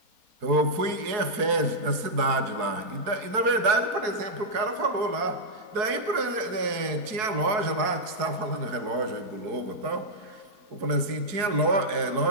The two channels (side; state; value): left; late; 4.7 ms